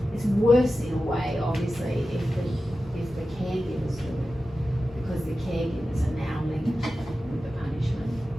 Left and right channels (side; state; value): both; normal; correlation 0.93